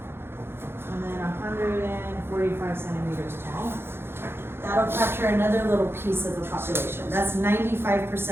and then 145 centimeters tall. That'll capture another little piece of the population. That's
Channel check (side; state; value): left; late; 0.11 ms